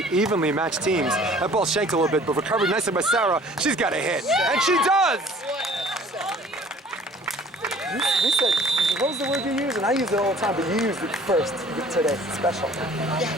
evenly matched teams. That ball shanked a little bit, but recovered nicely by Sara. She's got a hit, and she does! You said, what was the word you used? And I use it all the time, but you used it first today. Special.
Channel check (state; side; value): normal; both; correlation 0.51